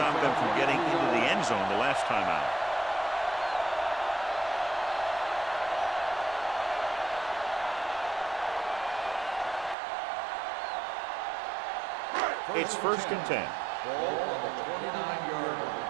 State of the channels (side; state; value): left; drops out; at 9.8 s